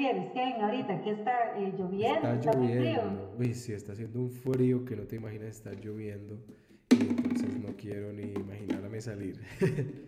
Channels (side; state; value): both; identical; correlation 1.00